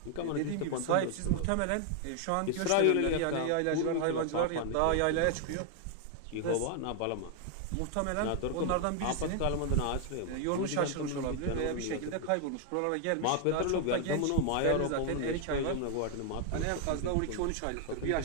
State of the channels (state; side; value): different; both; correlation 0.00